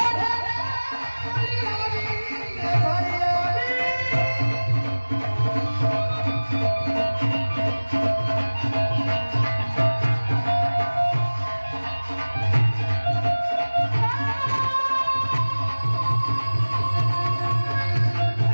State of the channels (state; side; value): inverted; both; correlation -1.00